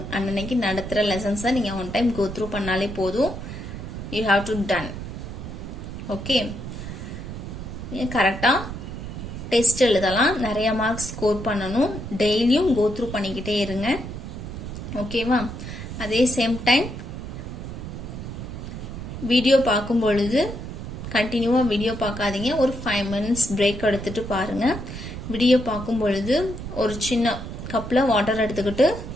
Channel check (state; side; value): noise; right; rumble, 8 dB below the sound